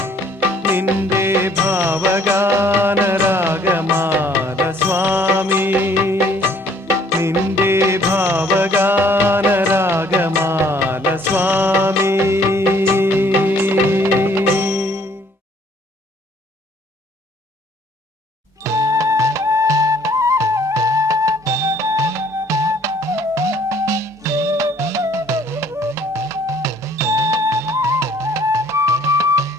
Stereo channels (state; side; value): normal; both; correlation 0.60